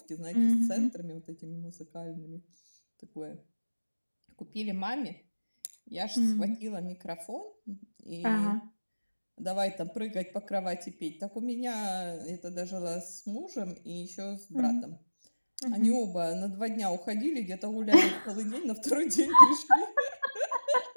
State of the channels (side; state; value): both; inverted; correlation -1.00